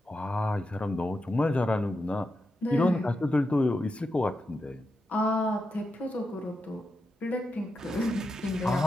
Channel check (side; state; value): both; normal; correlation 0.87